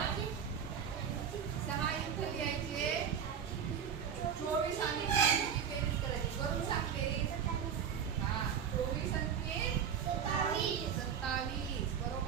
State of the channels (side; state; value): left; quieter; 7.8 dB